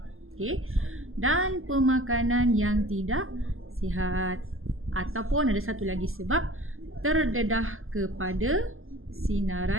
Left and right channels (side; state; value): left; late; 0.60 ms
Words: dan pemakanan yang tidak sihat, ataupun ada satu lagi sebab terdedah kepada